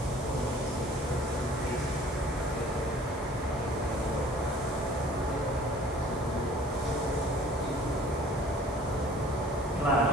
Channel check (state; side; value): normal; both; correlation 0.51